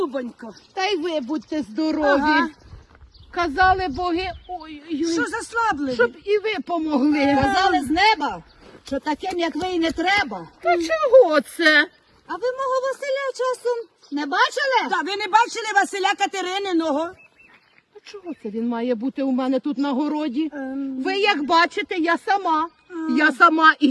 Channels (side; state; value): both; identical; correlation 1.00